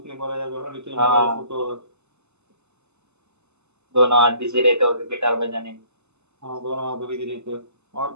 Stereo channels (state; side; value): late; left; 0.82 ms